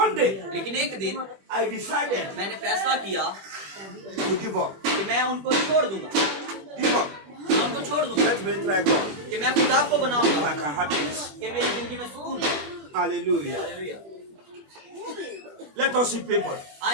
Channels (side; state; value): left; late; 21 ms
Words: day, लेकिन एक दिन I decided मैंने फैसला किया to give up. कि मैं उनको छोड़ दूंगा, Give up. मैं उनको छोड़ दूंगा, Let me try God. कि मैं खुदा को If बनाऊंगा I can have peace. कि मेरी जिंदगी में सुकून है. Hallelujah. Hallelujah. Let us see people